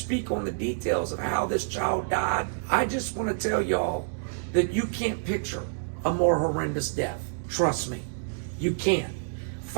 on the details of how this child died. I just want to tell y'all that you can't picture a more horrendous death. Trust me, you can't.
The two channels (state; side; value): silent; left; digital silence